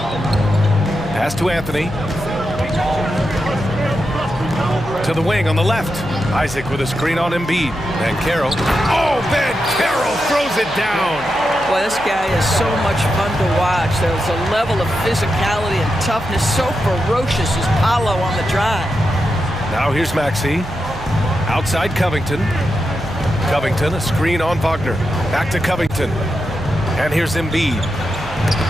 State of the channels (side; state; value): right; noise; hum, 18 dB below the sound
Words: Pass to Anthony. To the wing on the left. Isaac with a screen on Embiid. Van Carroll. Oh, Van Carroll throws it down. Boy, this guy is so much fun to watch. There's a level of physicality and toughness so ferocious as Paolo on the drive. Now here's Maxey. Outside Covington. Covington, a screen on Wagner. Back to Covington. And here's Embiid.